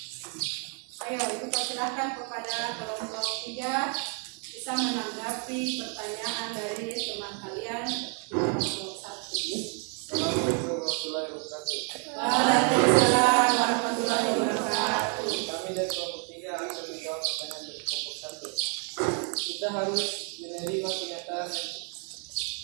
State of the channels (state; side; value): quieter; left; 39.9 dB